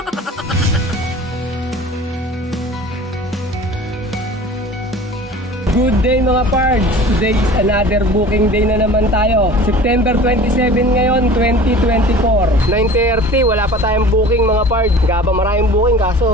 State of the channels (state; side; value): normal; both; correlation 0.42